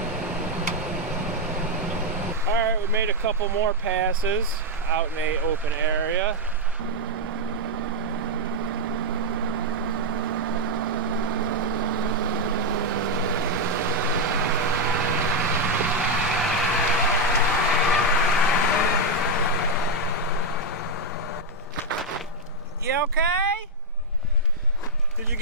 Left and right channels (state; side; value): normal; both; correlation 0.01